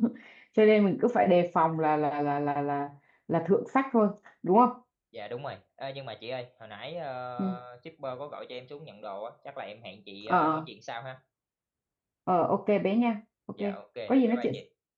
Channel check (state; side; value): identical; both; correlation 1.00